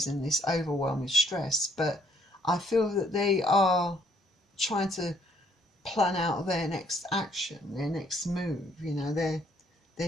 and this overwhelming stress, but I feel that they are trying to plan out their next action, their next move, you know.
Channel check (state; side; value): normal; both; correlation 0.65